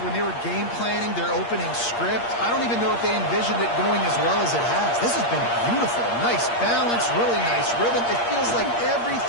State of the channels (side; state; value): right; late; 8.6 ms